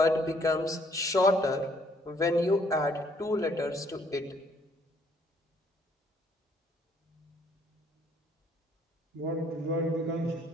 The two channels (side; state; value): both; normal; correlation 0.65